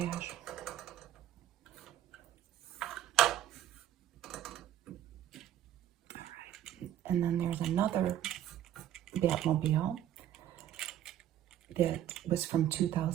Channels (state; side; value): quieter; left; 11.6 dB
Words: And then there's another Batmobile that was from